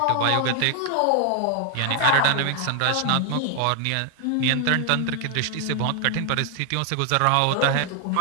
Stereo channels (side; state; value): both; different; correlation 0.00